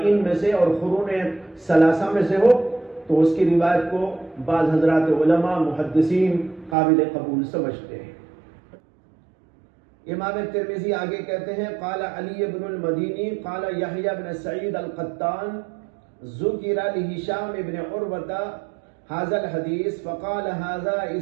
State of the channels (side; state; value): left; drops out; at 6.8 s